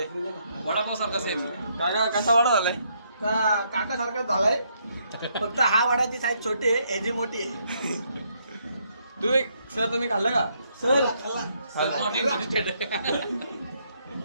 वडापाव सारखा सेम. काका कसा वडा झालाय? काका सारखा झालाय. फक्त हा वडाची साईज छोटी आहे, याची मोठी आहे. तुम्ही खाल्लं का? सर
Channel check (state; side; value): inverted; both; correlation -0.73